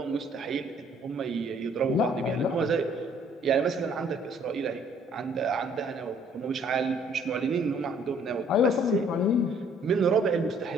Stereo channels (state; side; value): normal; both; correlation 0.60